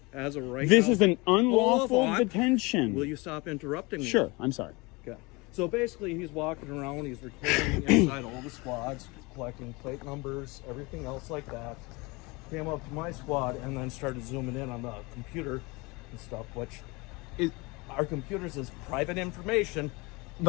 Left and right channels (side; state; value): right; quieter; 25.6 dB